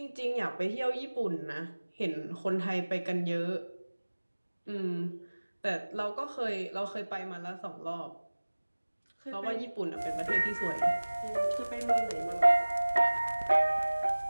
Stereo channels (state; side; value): inverted; both; correlation -1.00